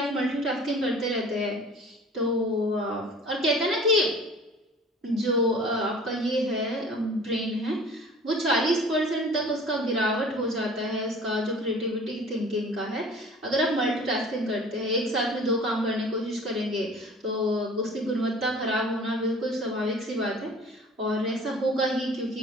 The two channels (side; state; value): both; normal; correlation 0.46